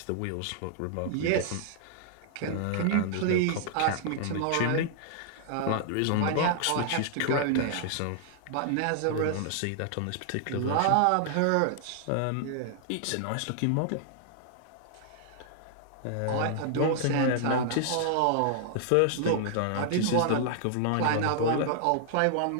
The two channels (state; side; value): different; both; correlation -0.01